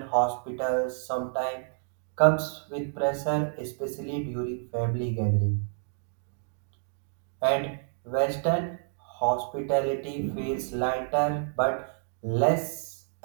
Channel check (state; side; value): silent; left; digital silence